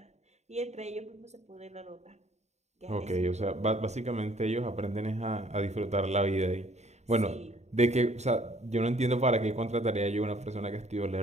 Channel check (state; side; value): late; left; 0.32 ms